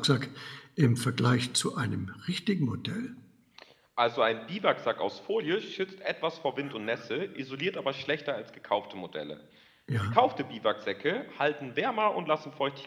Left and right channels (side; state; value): both; identical; correlation 1.00